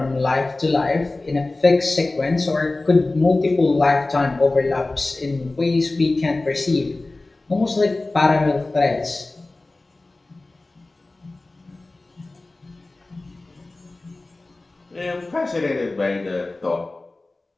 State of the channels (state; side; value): quieter; right; 3.1 dB